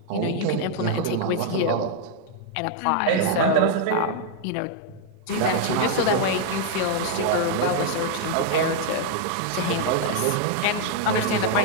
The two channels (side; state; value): both; different; correlation 0.00